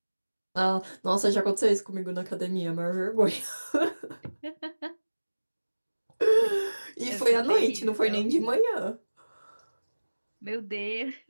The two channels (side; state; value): both; inverted; correlation -1.00